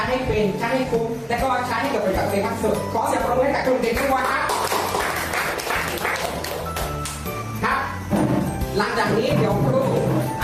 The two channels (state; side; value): identical; both; correlation 1.00